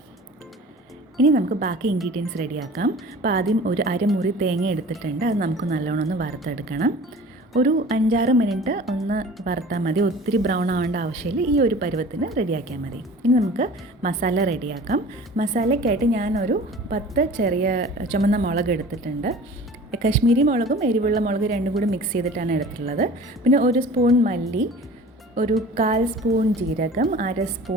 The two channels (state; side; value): normal; both; correlation 0.42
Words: ഇനി നമുക്ക് ബാക്കി ഇൻഗ്രീഡിയൻസ് റെഡിയാക്കാം. അപ്പോൾ ആദ്യം ഒരു അരമുറി തേങ്ങ എടുത്തിട്ടുണ്ട്. അത് നമുക്ക് നല്ലോണം ഒന്ന് വറുത്തെടുക്കണം. ഒരു 5-6 മിനിറ്റ് ഒന്ന് വറുത്താൽ മതി. ഒത്തിരി ബ്രൗൺ ആവേണ്ട ആവശ്യമില്ല. ഈ ഒരു പരുവത്തിന് റെഡിയാക്കിയാൽ മതി. ഇനി നമുക്ക് മസാല റെഡിയാക്കാം. മസാലയ്ക്കായിട്ട് ഞാനൊരു 10 ചെറിയ ചുമന്ന മുളക് എടുത്തിട്ടുണ്ട്. കശ്മീരി മുളകും എരിവുള്ള മുളക് രണ്ടും കൂടി മിക്സ് ചെയ്തിട്ടാണ് എടുത്തിട്ടുള്ളത്. പിന്നെ 1 സ്പൂൺ മല്ലി, ഒരു 1/4 സ്പൂൺ ജീരകം, 1/2